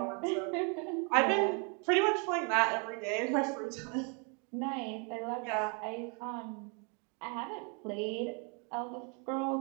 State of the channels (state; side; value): quieter; left; 36.1 dB